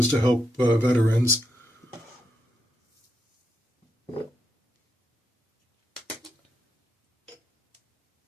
to help veterans.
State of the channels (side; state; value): both; normal; correlation 0.82